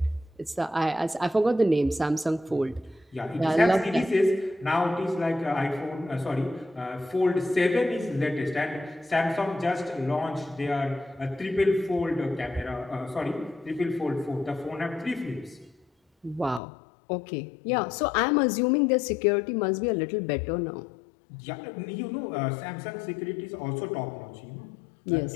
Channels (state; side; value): drops out; right; at 16.6 s